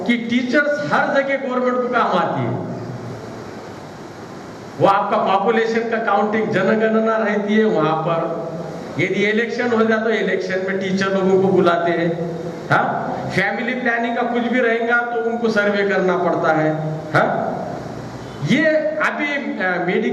कि टीचर्स हर जगह गवर्नमेंट को काम आती है। वो आपका पॉपुलेशन का काउंटिंग, जनगणना रहती है वहां पर। यदि इलेक्शन हो जाए तो इलेक्शन में टीचर लोगों को बुलाते हैं। हाँ, फैमिली प्लानिंग का कुछ भी रहेगा तो उनको सर्वे करना पड़ता है। हाँ, ये अभी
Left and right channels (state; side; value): identical; both; correlation 1.00